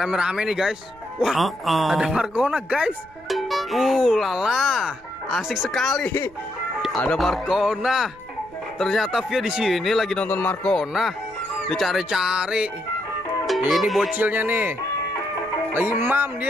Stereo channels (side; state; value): right; noise; rumble, 26 dB below the sound